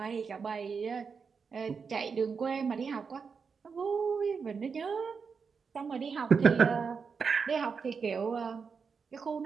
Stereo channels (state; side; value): quieter; left; 5.6 dB